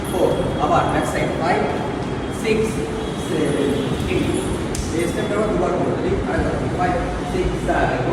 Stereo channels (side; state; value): both; identical; correlation 1.00